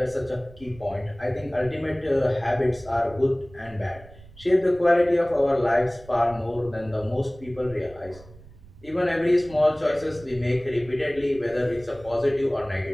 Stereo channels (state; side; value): noise; right; rumble, 21 dB below the sound